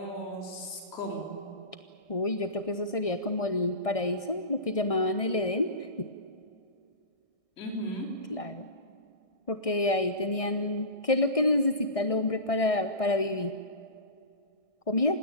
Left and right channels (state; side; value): late; right; 1.6 ms